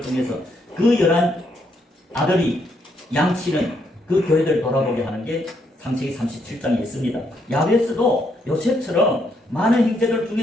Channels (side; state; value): both; normal; correlation 0.75